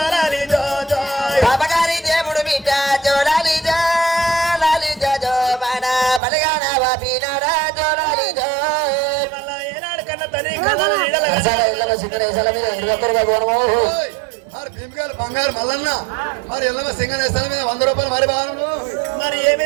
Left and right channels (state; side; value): drops out; left; at 6.2 s